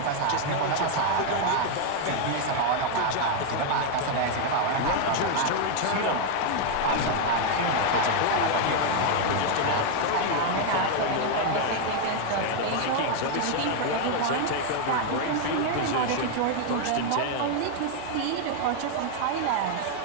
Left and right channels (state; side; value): different; both; correlation 0.00